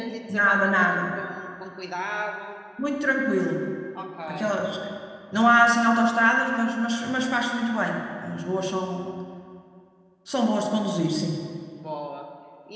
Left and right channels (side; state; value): both; identical; correlation 1.00